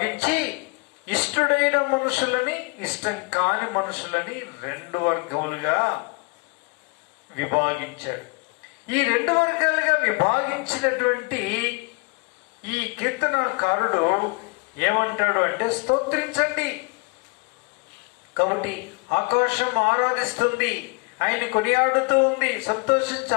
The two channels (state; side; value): quieter; right; 31.0 dB